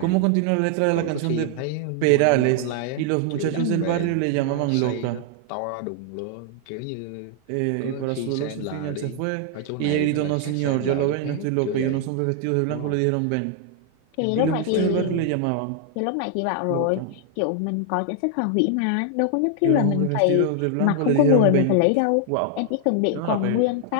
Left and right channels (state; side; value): different; both; correlation 0.00